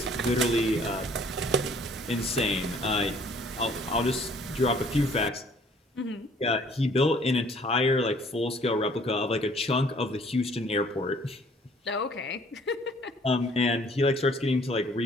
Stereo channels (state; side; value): normal; both; correlation 0.58